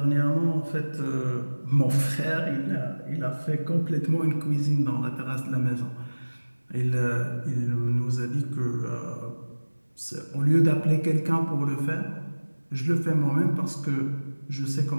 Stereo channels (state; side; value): inverted; both; correlation -1.00